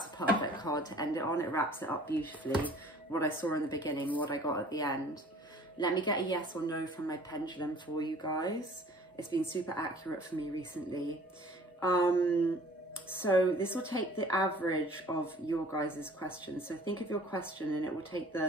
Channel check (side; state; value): both; normal; correlation 0.51